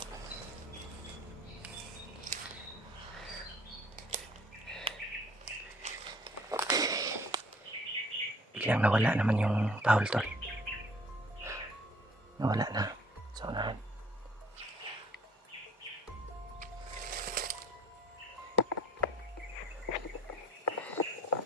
Biglang nawala naman yung tahol, tol. Nawala na sa unahan.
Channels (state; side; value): normal; both; correlation 0.55